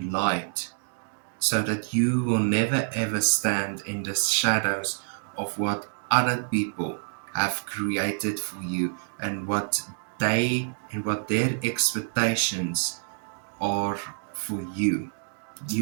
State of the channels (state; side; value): silent; left; 60 dB below the other